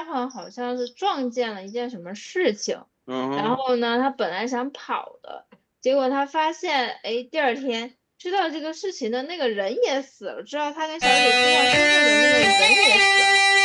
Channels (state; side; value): identical; both; correlation 1.00